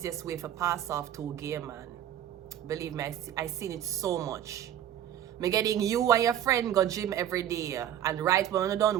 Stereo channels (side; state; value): left; quieter; 10.9 dB